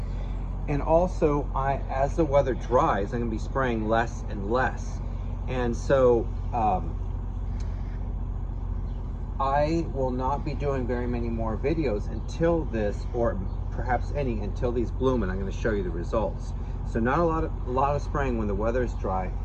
And also, as the weather dries, I'm going to be spraying less and less. And so I will not be doing very many more videos until this, or perhaps any, until these bloom, and I'm going to show you the results. So not a lot of spraying when the weather is dry.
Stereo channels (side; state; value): both; identical; correlation 1.00